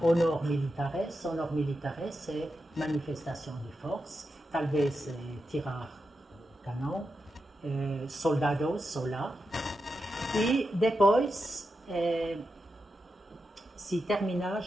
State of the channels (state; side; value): normal; both; correlation 0.88